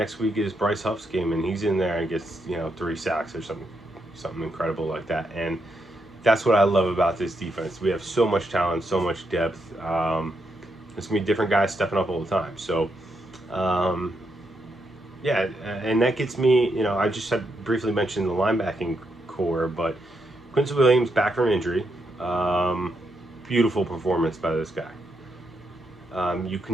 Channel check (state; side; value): normal; both; correlation 0.80